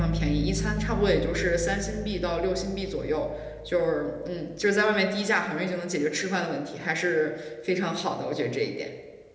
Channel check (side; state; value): both; identical; correlation 1.00